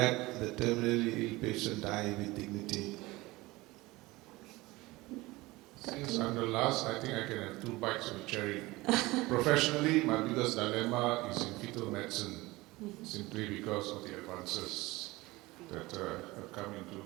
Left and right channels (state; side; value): quieter; left; 20.7 dB